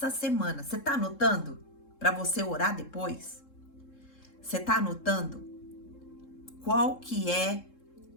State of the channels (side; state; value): right; late; 3.7 ms